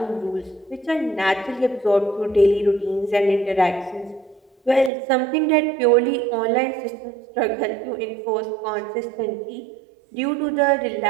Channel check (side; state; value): left; drops out; at 4.9 s